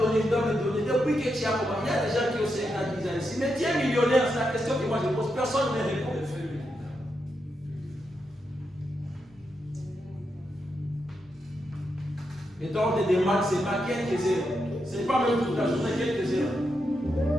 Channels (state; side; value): normal; both; correlation 0.84